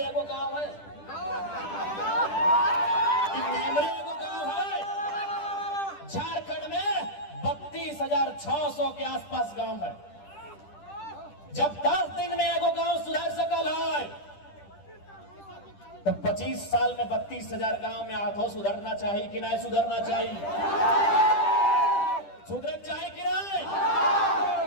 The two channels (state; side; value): late; right; 10 ms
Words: एगो गांव है, कि नेमरे एगो गांव है? झारखंड में 32,600 के आसपास गांव है। जब 10 दिन में एगो गांव सुधार सकल है तो 25 साल में 32,000 गांव में आधो सुधरना चाहिए कि नहीं सुधरना चाहिए? सुधर चाहिए कि नहीं?